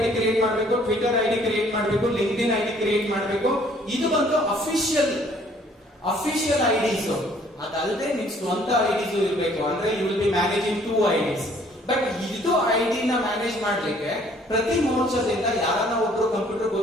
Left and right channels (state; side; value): normal; both; correlation 0.60